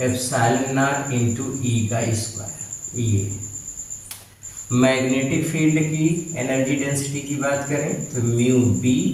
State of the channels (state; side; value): identical; both; correlation 1.00